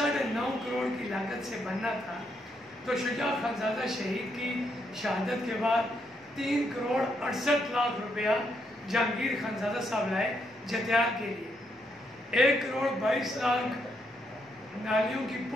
کروڑ کی لاگت سے بننا تھا، تو شجاع خانزادہ شہید کی شہادت کے بعد 3 کروڑ 68 لاکھ روپیہ جہانگیر خانزادہ صاحب لائے جتیال کے لیے، 1 کروڑ 22 لاکھ نالیوں کی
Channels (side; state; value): both; normal; correlation 0.77